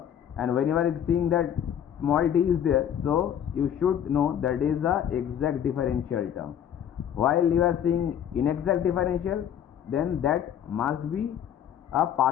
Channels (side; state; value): right; quieter; 9.5 dB